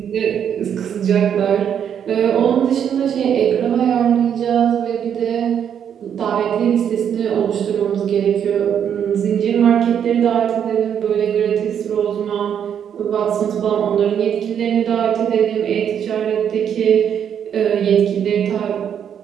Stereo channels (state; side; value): quieter; left; 8.6 dB